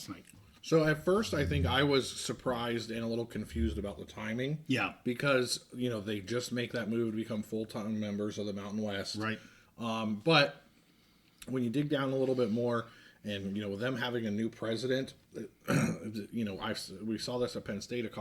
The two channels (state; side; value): identical; both; correlation 1.00